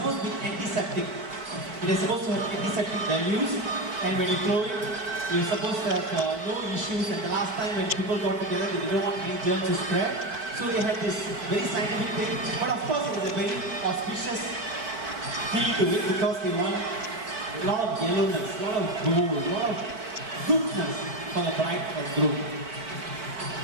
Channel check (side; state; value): left; late; 4.5 ms